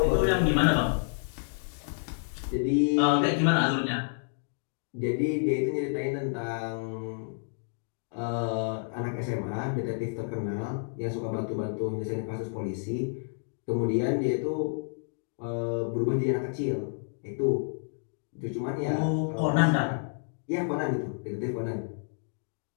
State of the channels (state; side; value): silent; right; digital silence